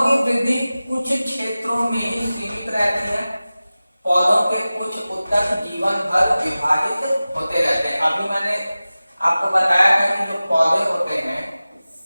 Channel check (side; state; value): both; inverted; correlation -0.97